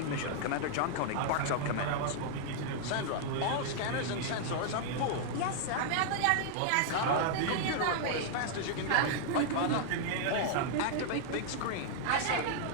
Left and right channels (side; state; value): both; different; correlation -0.01